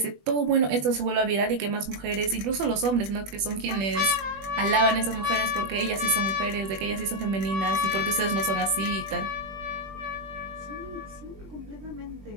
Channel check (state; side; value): late; left; 20 ms